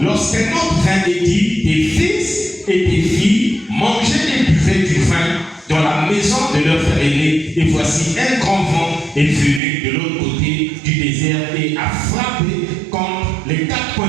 lorsqu'un autre vint et dit, tes fils et tes filles mangeaient et buvaient du vin dans la maison de leur frère aîné. Et voici un grand vent est venu de l'autre côté du désert et a frappé contre les 4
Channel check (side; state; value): left; drops out; at 9.6 s